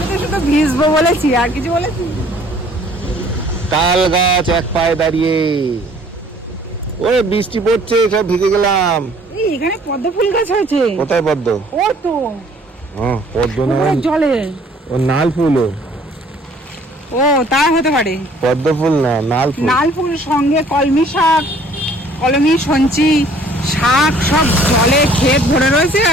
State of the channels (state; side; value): normal; both; correlation 0.57